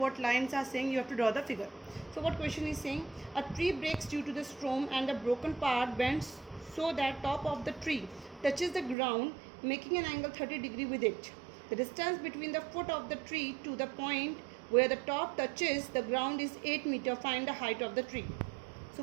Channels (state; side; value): drops out; left; at 9.0 s